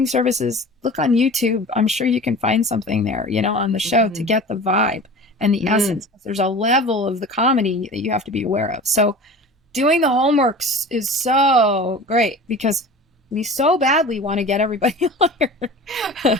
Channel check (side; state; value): both; normal; correlation 0.38